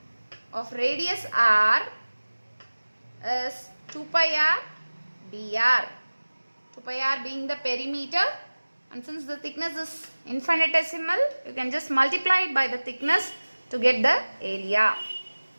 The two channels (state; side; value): inverted; both; correlation -1.00